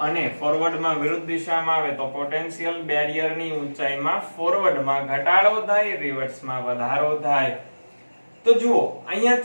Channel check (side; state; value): both; inverted; correlation -1.00